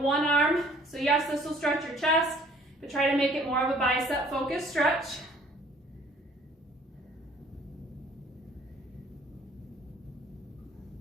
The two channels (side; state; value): both; normal; correlation 0.56